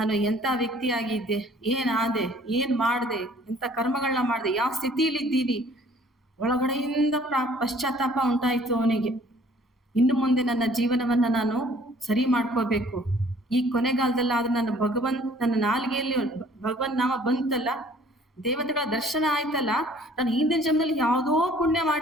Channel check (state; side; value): normal; both; correlation 0.56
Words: ಎಂಥ ವ್ಯಕ್ತಿಯಾಗಿದ್ದೆ, ಏನಾದೆ, ಏನ್ ಮಾಡಿದೆ, ಎಂಥ ಕರ್ಮಗಳನ್ನ ಮಾಡಿದೆ, ಯಾವ ಸ್ಥಿತಿಲಿದ್ದೀನಿ, ಒಳಗಡೆಯಿಂದ ಪಶ್ಚಾತ್ತಾಪ ಉಂಟಾಯಿತು ಅವನಿಗೆ. ಇನ್ನು ಮುಂದೆ ನನ್ನ ಜೀವನವನ್ನ ನಾನು ಸರಿ ಮಾಡ್ಕೋಬೇಕು. ಈ ಕೊನೆಗಾಲದಲ್ಲಾದ್ರೂ ನನ್ನ ನಾಲಿಗೆಯಲ್ಲಿ ಭಗವಂತ ನಾಮ ಬಂತಲ್ಲ, ದೇವತೆಗಳ ದರ್ಶನ ಆಯ್ತಲ್ಲ, ನಾನು ಹಿಂದಿನ ಜನ್ಮದಲ್ಲಿ ಯಾವುದೋ ಪುಣ್ಯ